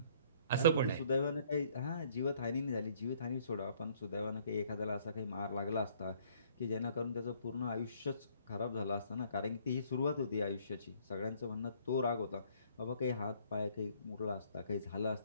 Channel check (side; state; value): both; inverted; correlation -0.61